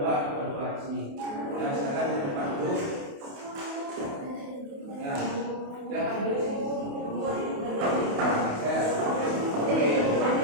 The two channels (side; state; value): left; late; 28 ms